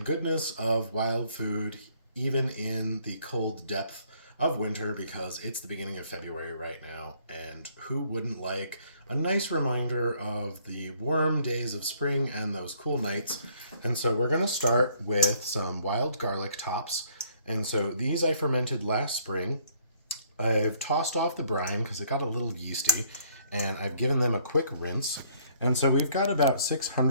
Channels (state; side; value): inverted; both; correlation -0.63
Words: of wild food even in the cold depth of winter, because it's the beginning of February right now, and who wouldn't like a nice reminder of the warm days of spring and those cool nights. And so we're going to start with some wild garlic tops. And so these I fermented last spring. I've tossed off the brine because it got a little yeasty, and I've given them a quick rinse. And so we've got about